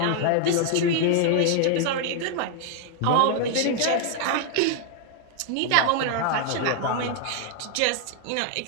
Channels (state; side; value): different; both; correlation 0.00